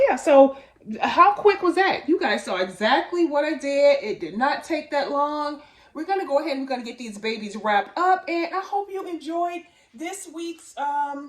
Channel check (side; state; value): both; identical; correlation 1.00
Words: so how quick was that? You guys saw exactly what I did. It did not take that long. We're going to go ahead and we're going to get these babies wrapped up. And I hope you enjoyed this week's